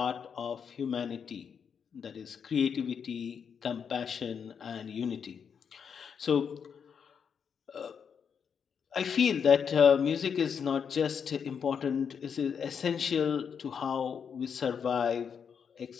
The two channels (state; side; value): quieter; right; 7.0 dB